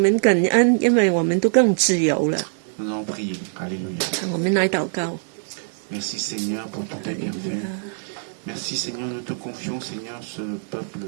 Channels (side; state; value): left; silent; 61 dB below the other